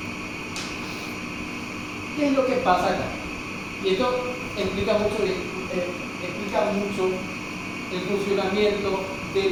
¿Qué es lo que pasa acá? Y esto explica mucho el funcionamiento de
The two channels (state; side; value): identical; both; correlation 1.00